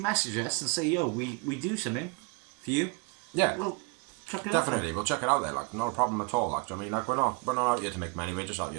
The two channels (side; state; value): left; quieter; 31.2 dB